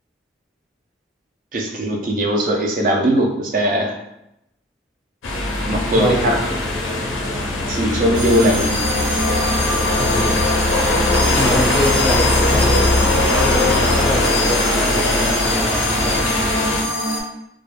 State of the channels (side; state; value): both; normal; correlation 0.41